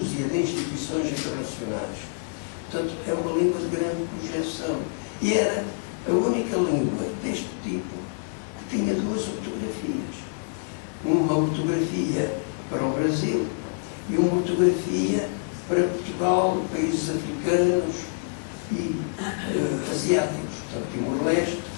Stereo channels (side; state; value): right; silent; 61 dB below the other